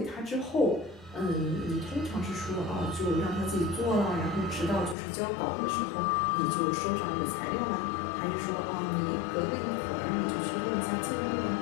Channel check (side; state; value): right; drops out; at 5.0 s